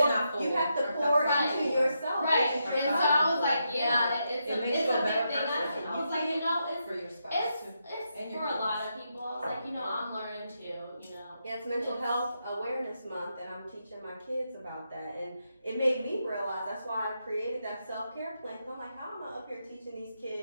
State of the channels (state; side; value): inverted; both; correlation -0.83